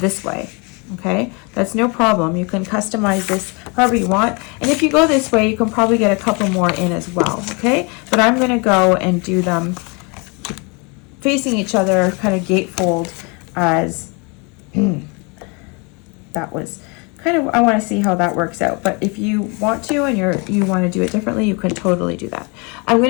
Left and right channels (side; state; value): right; quieter; 31.0 dB